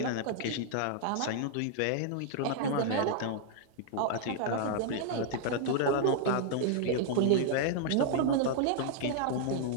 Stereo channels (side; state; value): both; different; correlation -0.01